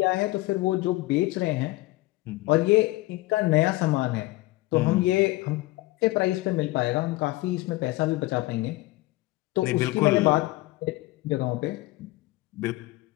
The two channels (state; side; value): quieter; right; 19.7 dB